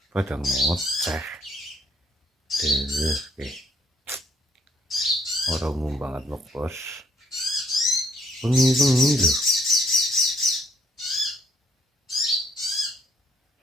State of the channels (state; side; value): normal; both; correlation 0.66